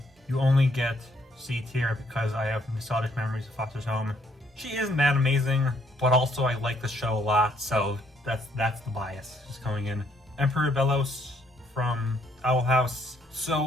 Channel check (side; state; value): both; normal; correlation 0.69